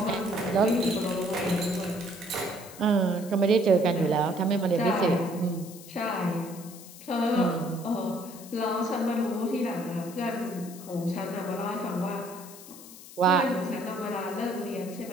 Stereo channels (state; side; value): noise; left; hiss, 17 dB below the sound